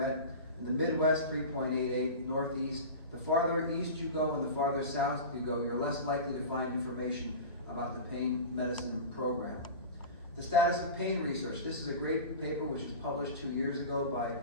In the Midwest, 3.88, Northeast. The farther east you go and the farther south you go, you're less likely to find information about the pain medicine program. The status of pain research. This is a great paper which was published 2 years ago by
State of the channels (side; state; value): both; inverted; correlation -0.31